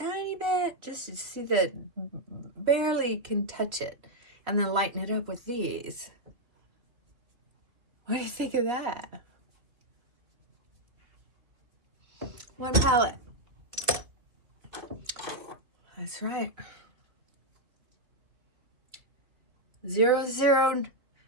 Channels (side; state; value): left; late; 2.7 ms